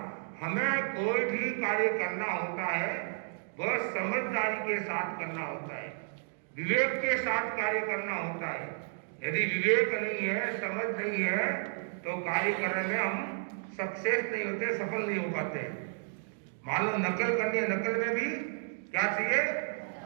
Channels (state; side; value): silent; left; digital silence